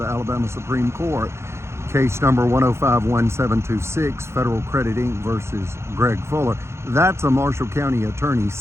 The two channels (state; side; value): late; left; 0.13 ms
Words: Alabama Supreme Court. Case number 1051726, Federal Credit Inc. versus Greg Fuller. That's a Marshall County attorney's